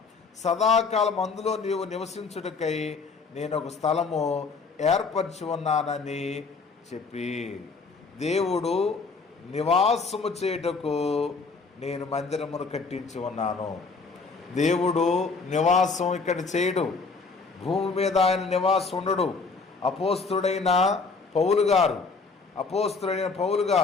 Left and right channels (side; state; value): right; quieter; 4.4 dB